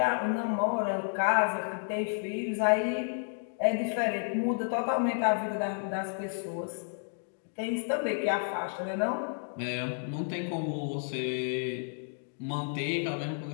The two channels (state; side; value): silent; right; digital silence